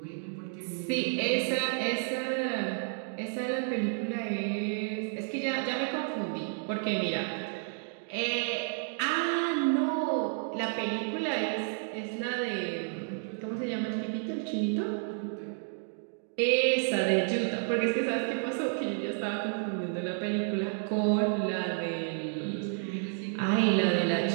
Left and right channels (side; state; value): left; silent; 57 dB below the other